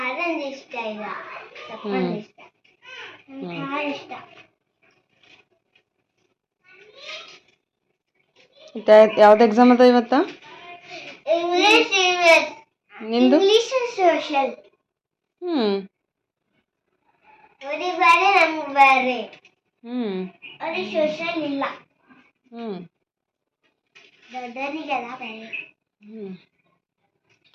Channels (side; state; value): both; identical; correlation 1.00